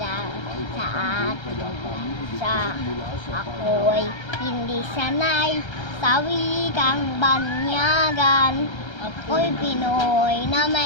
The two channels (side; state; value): right; late; 1.3 ms